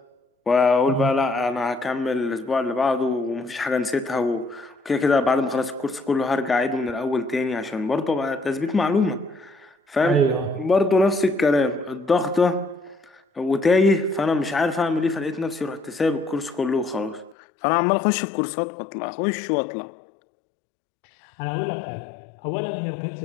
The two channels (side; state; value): right; drops out; at 17.4 s